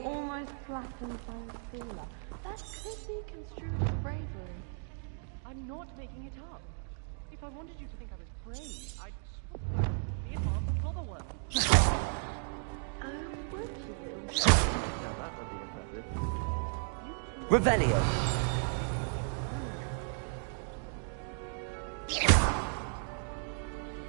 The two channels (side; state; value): left; silent; 55 dB below the other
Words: almost flattened by a sealer, that could be construed as bravery. I'm not making it up. If I wanted you to think I was brave, I'd swap the advanced clobberworm. Oh, would you? Now that would be impressive. Revelio.